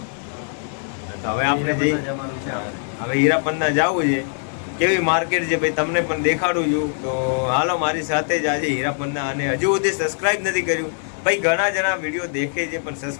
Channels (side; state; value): right; silent; digital silence